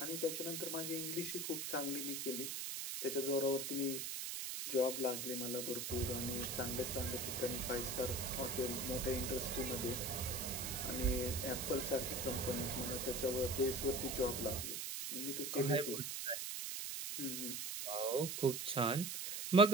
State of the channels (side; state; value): right; noise; hiss, 3 dB below the sound